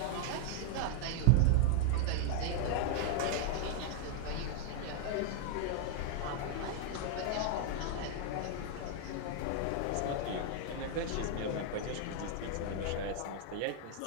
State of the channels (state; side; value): different; both; correlation 0.00